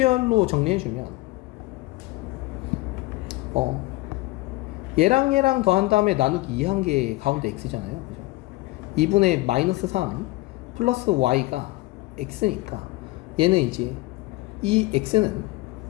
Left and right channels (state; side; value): quieter; right; 20.2 dB